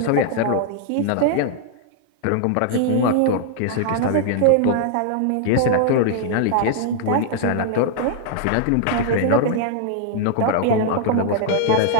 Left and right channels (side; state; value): both; different; correlation -0.01